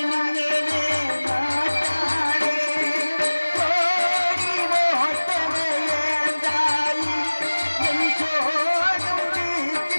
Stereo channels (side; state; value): both; inverted; correlation -1.00